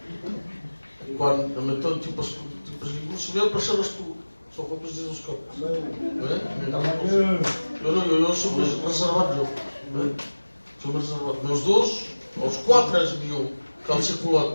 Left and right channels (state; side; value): inverted; both; correlation -1.00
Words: Quand, mettons, tu passes, Samuel, pour ça, só for preciso os campos. Eu sou reservado. Sou reservado. Meus dois, aos 4 mil